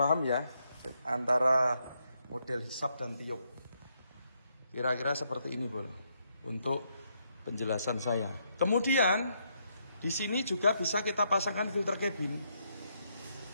ya antara model hisap dan tiup. Kira-kira seperti ini bro untuk penjelasan saya. Kemudian di sini juga bisa kita pasangkan filter cabin.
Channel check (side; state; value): both; inverted; correlation -0.76